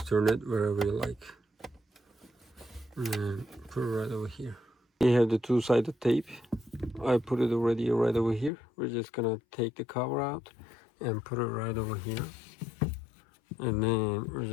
turn it wherever you like and put it right over here. We have the two-sided tape. I put it already right over here. We're just gonna take the cover out and put it right over here, and then we're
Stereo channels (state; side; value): drops out; right; at 8.5 s